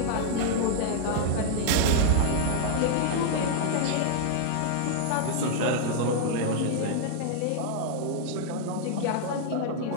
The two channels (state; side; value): different; both; correlation -0.01